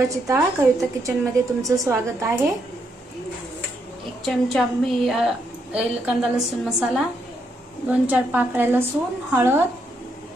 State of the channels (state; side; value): normal; both; correlation 0.77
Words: डाळ। कविता किचन मध्ये तुमचं स्वागत आहे। 1 चमचा मी कांदा लसूण मसाला, 2-4 पाकळ्या लसूण,